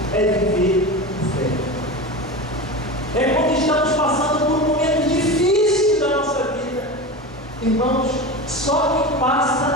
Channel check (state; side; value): normal; both; correlation 0.26